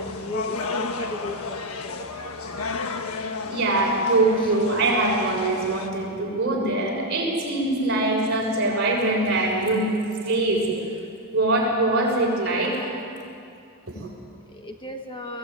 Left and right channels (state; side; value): normal; both; correlation 0.01